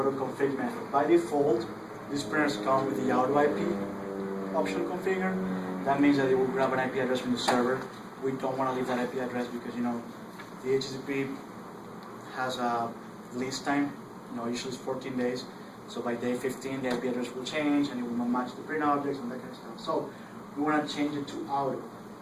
to config method. By default, these printers come with the auto IP option configured. That means that it will grab an IP address from the server. We don't want to leave that IP address because the HTTP has a release time. Usually it's 14 days. So by day 15, the IP address will change and it will not match the print objects and that kind of stuff. So we want to change it to auto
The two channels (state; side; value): identical; both; correlation 1.00